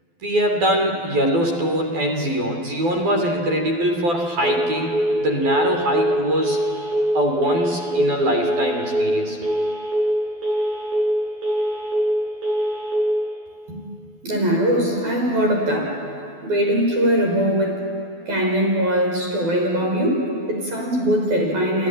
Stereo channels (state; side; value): late; left; 12 ms